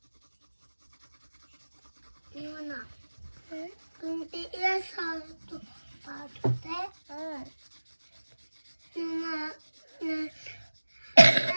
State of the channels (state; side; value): inverted; both; correlation -1.00